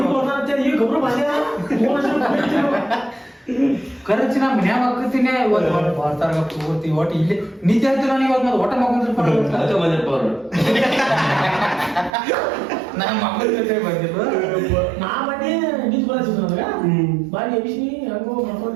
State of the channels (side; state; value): left; drops out; at 12.1 s